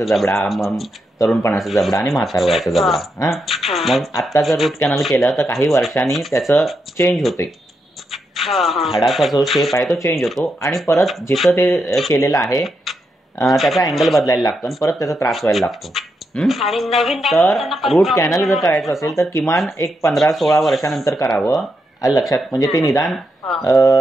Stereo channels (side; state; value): both; normal; correlation 0.83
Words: जबडा, मग तरुणपणाचा जबडा आणि म्हातार वयाचा जबडा. मग आता जर रूट कॅनल केलं तर काही वर्षांनी त्याचं चेंज होते. हाडाचा जो शेप आहे तो चेंज होतो आणि परत जिथं ते केलेलं आहे त्याचा अँगल बदलायला लागतो आणि परत त्याचा त्रास व्हायला लागतो. तर रूट कॅनल जर करायचं असेल तर किमान एक 15-16 वर्षानंतर करावं. लक्षात. म्हणजे ते निदान